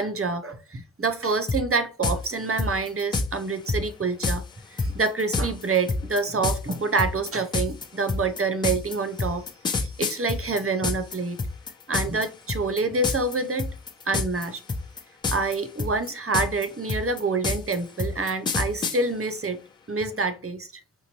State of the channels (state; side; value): normal; both; correlation 0.31